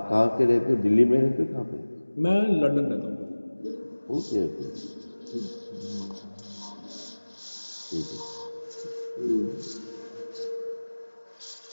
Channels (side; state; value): both; inverted; correlation -1.00